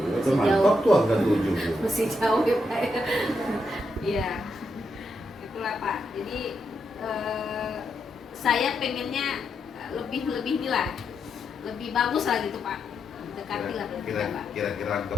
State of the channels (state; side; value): normal; both; correlation 0.82